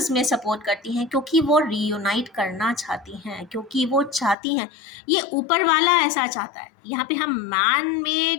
सपोर्ट करती हैं, क्योंकि वो रीयूनाइट करना चाहती हैं, क्योंकि वो चाहती हैं, ये ऊपर वाला ऐसा चाहता है। यहाँ पे हम मैन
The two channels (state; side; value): drops out; right; at 4.4 s